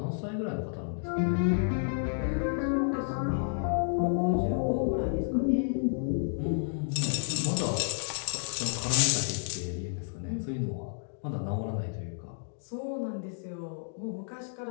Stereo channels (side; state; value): right; silent; digital silence